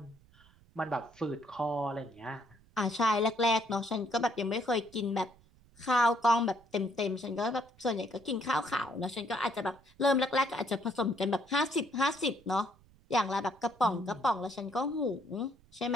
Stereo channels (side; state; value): right; noise; rumble, 28 dB below the sound